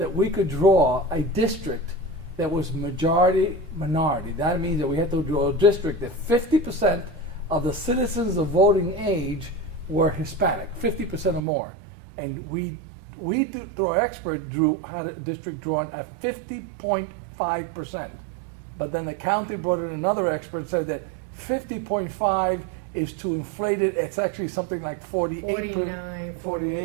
we could draw a district that was majority minority. That means that we had to draw a district that 50% of the citizens of voting age were Hispanic, 50% or more. And we through our expert, had a district drawn at 50.5%. But then the county brought in another expert, said that 50.5 is too inflated. It's actually something like 48, 49,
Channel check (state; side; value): drops out; left; at 11.4 s